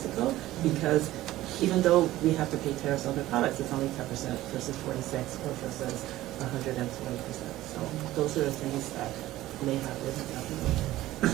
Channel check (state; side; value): quieter; left; 15.8 dB